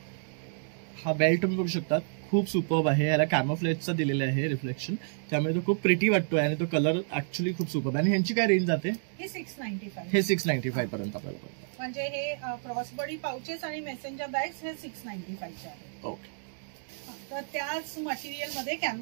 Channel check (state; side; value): silent; left; digital silence